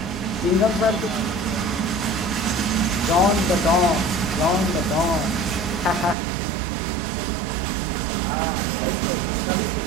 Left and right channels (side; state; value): left; drops out; at 6.2 s